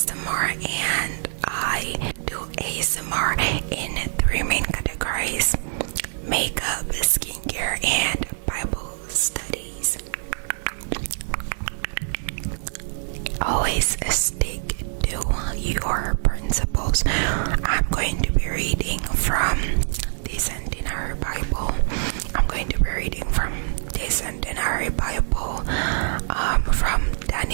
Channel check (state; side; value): silent; left; digital silence